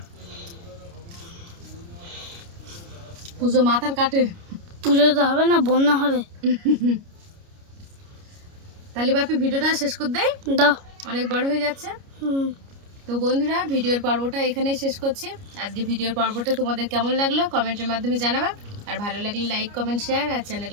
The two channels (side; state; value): left; late; 29 ms